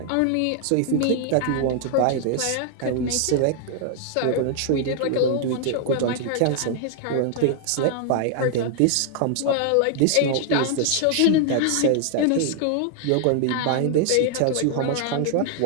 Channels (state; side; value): different; both; correlation 0.00